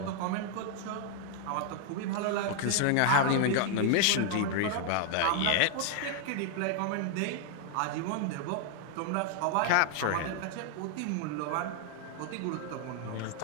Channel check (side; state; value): both; different; correlation 0.00